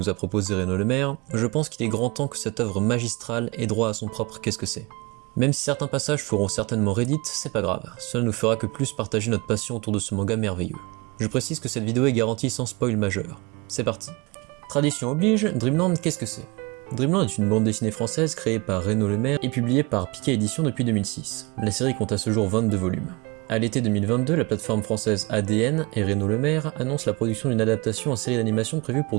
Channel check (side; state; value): left; quieter; 25.6 dB